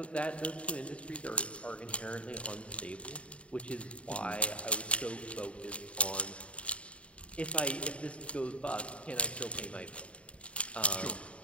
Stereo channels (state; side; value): late; right; 0.062 ms